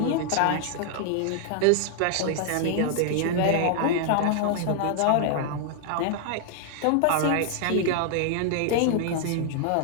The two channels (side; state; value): both; different; correlation -0.01